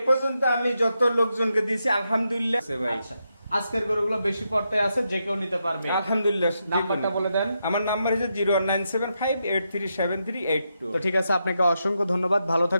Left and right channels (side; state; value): both; inverted; correlation -0.84